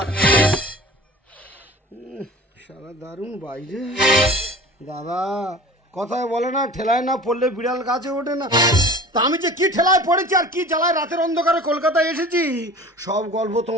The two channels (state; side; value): normal; both; correlation 0.41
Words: সারা দারুণ বাইরে দাদা, কথায় বলে না, ঠেলায় না পড়লে বিড়াল গাছে ওঠে না। তা আমি যে কি ঠেলায় পড়েছি আর কি জ্বালায় রাতের অন্ধকারে কলকাতায় এসেছি, সব গল্প